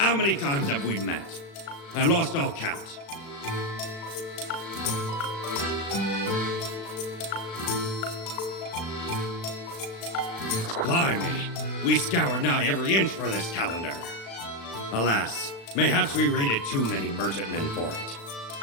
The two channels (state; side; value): late; right; 36 ms